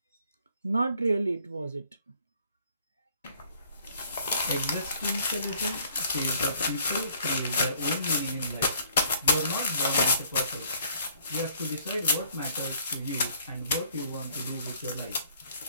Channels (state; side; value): inverted; both; correlation -0.60